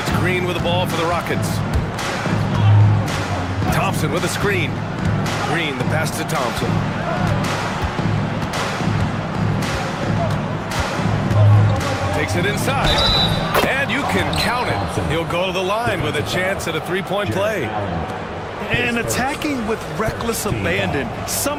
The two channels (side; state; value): both; identical; correlation 1.00